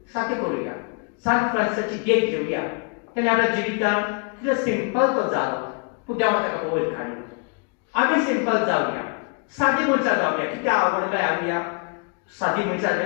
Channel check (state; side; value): quieter; right; 37.5 dB